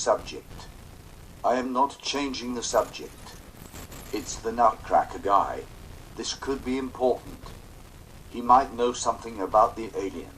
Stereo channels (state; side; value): identical; both; correlation 1.00